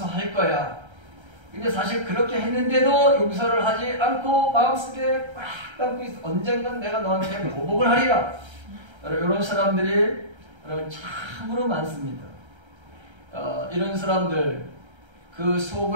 거야. 근데 사실 그렇게 했는데도 용서를 하지 않고 마음속에 꽉 담고 있어. 언젠간 내가 너한테 보복을 하리라. 이런 사람들이 참으로 많습니다. 이런 사람들, 그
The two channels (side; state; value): left; late; 1.3 ms